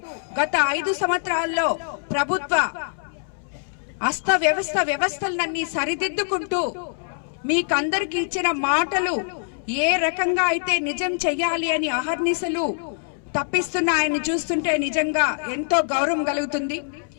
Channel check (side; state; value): right; silent; 63 dB below the other